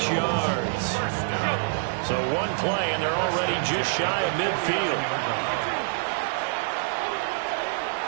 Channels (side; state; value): left; silent; 61 dB below the other